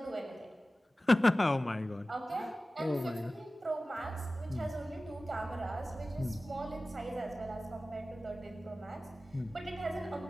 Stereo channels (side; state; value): both; normal; correlation 0.96